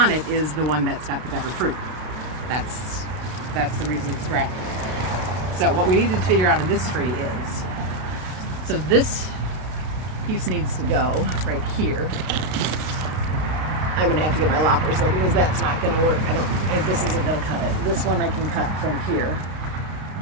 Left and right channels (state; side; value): late; left; 32 ms